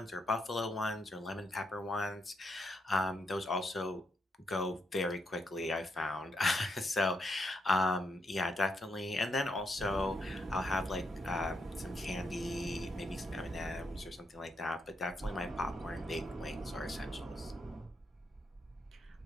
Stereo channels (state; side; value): normal; both; correlation 0.79